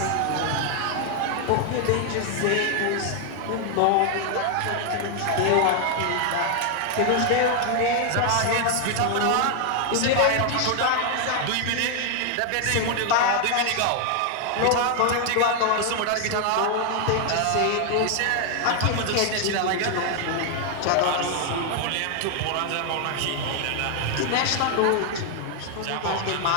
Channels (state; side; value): different; both; correlation 0.00